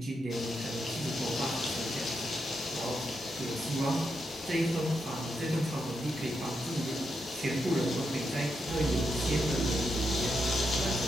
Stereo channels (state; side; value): normal; both; correlation 0.83